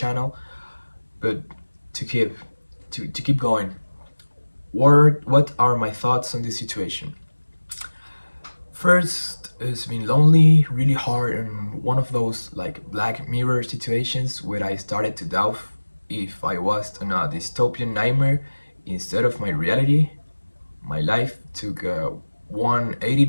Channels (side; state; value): both; inverted; correlation -1.00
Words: But to keep going, what are my thoughts on this situation? First, it's been lonely, really hard, and one of those like Black Mirror situations where I started to doubt if I was in a dystopian nightmare instead of my reality. My life took a